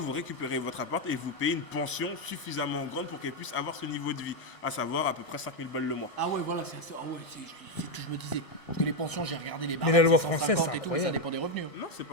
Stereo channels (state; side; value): late; right; 1.6 ms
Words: récupérez votre appart et vous payez une pension suffisamment grande pour qu'elle puisse avoir ce niveau de vie, à savoir à peu près 5 000 balles le mois. Ah ouais, voilà, c'est ce que je me disais. Parce que les pensions, j'ai regardé les barres. Mais la loi française, c'est et tout, mais ça incroyable. dépend des revenus. Non, c'est